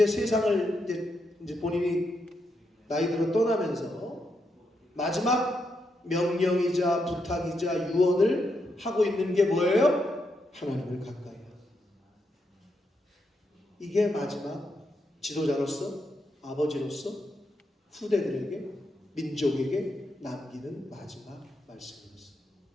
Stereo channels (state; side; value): normal; both; correlation 0.82